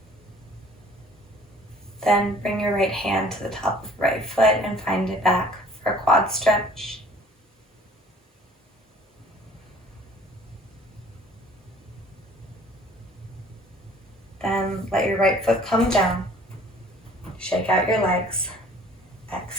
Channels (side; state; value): both; normal; correlation 0.53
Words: Then bring your right hand to the top of the right foot and find it back for a quad stretch. Then let your right foot come down. Shake out your legs.